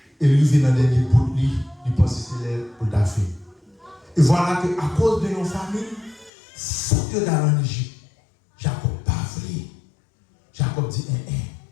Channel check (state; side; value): drops out; right; at 6.3 s